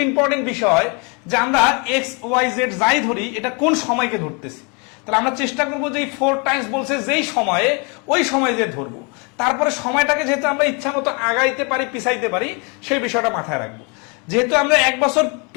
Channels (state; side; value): quieter; right; 33.1 dB